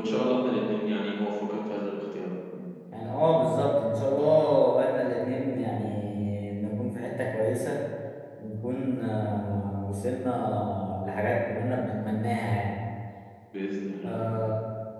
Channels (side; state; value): both; identical; correlation 1.00